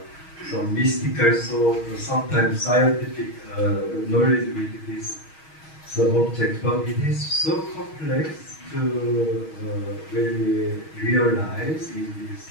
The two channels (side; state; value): right; late; 6.3 ms